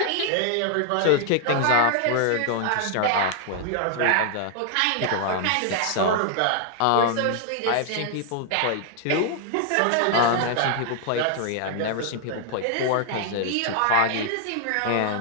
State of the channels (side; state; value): both; different; correlation 0.00